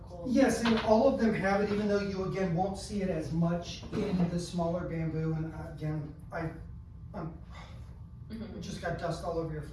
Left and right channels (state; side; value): identical; both; correlation 1.00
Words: yes, and all of them have it, even though you again won't see it as much in the smaller bamboo. And again, I just got dust all over your